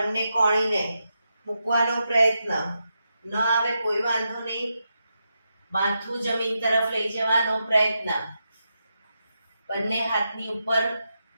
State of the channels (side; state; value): both; inverted; correlation -0.86